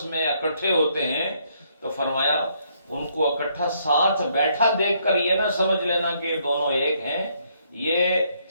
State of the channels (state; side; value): inverted; both; correlation -0.70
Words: میں اکٹھے ہوتے ہیں تو فرمایا ان کو اکٹھا ساتھ بیٹھا دیکھ کر یہ نہ سمجھ لینا کہ یہ دونوں ایک ہیں. یہ